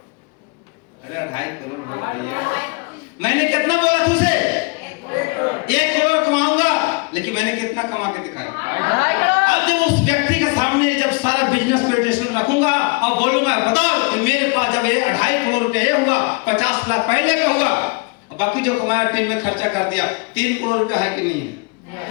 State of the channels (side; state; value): right; quieter; 29.7 dB